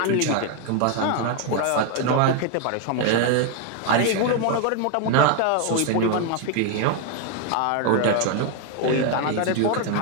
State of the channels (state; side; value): different; both; correlation 0.01